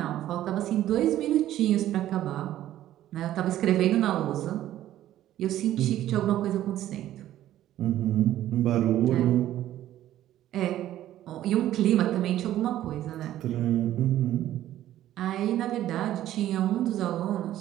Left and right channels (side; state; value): left; quieter; 13.0 dB